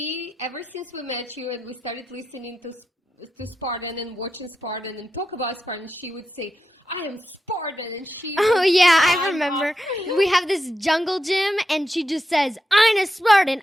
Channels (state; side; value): normal; both; correlation 0.88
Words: ever since we met you and we started listening to Spartan and watching Spartan and talk about Spartan, she would say, I am Spartan. And she Oh, would yeah, I climb remember. up. We have this jungle gym, and she just says, I'm a Spartan,